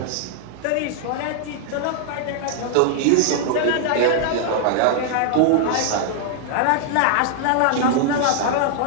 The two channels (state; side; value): different; both; correlation -0.01